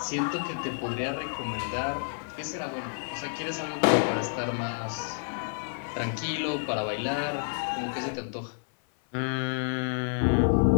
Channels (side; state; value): right; silent; 57 dB below the other